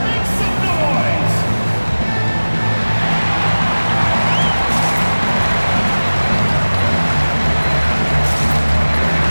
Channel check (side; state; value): both; inverted; correlation -1.00